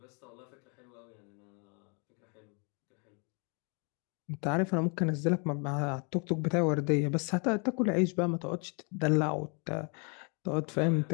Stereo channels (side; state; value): right; quieter; 35.5 dB